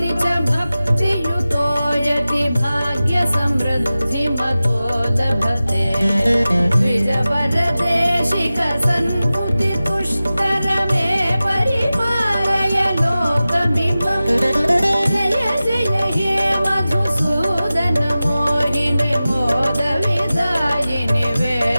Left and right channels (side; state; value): both; inverted; correlation -0.96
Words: च भक्तियुतो यति भाग्यसमृद्धिमतो लभते द्विजवरदेशिक सन्मुति तुष्टरमे परिपालय लोकमिमम् जय जय हे मधुसूदन मोहिनि मोद विदायिनि